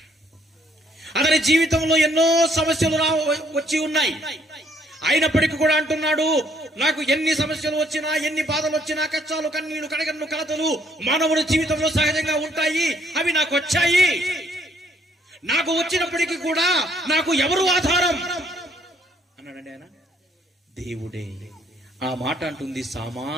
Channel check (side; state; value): both; normal; correlation 0.66